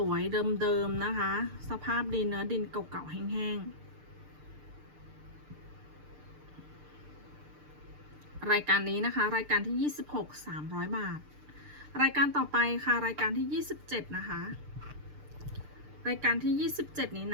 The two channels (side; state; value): left; late; 6.7 ms